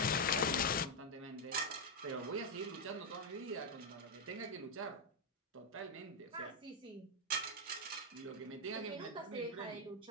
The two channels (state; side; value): normal; both; correlation 0.00